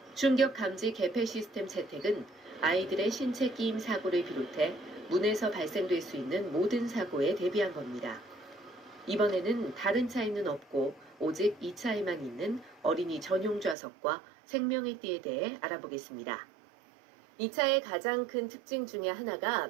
충격 감지 개폐 시스템 채택은 아이들의 신체 끼임 사고를 비롯해 문에서 발생될 수 있는 모든 사고에 대비한 겁니다. 이번에는 다른 차에는 없고 오직 이 차에만 있는 어린이 전용 좌석과 생명의 띠에 대해 알아보겠습니다. 이 차의 가장 큰 특징 중에 하나가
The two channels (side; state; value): left; drops out; at 13.8 s